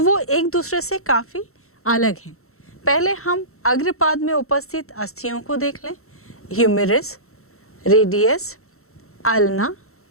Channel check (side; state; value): right; late; 0.63 ms